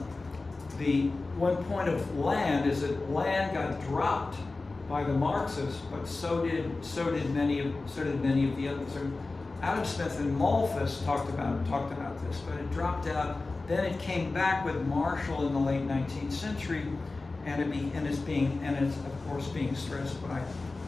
one point of land is that land got dropped by the Marxists, but so did many of the others. So Adam Smith and Malthus talked about this, but it dropped out. Then it came back with Marshall in the late 19th century, and it's of course being stressed by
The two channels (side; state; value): right; quieter; 3.5 dB